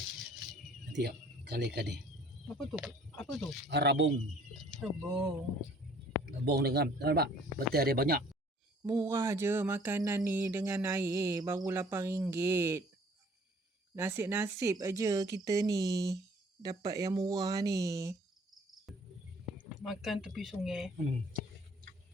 Nanti kali-kali. Apa tu? Rabung. Rebung. Dengan nampak betul ada banyak. Murah je makanan ni dengan air. Baru RM8. Nasib-nasib aja kita ni dapat yang murah ni. Makan tepi sungai.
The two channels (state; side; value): normal; both; correlation 0.56